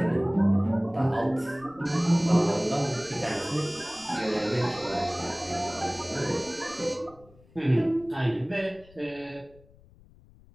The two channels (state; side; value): noise; left; rumble, 26 dB below the sound